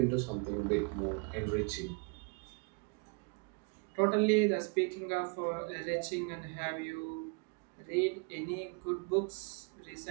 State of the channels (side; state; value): left; quieter; 35.7 dB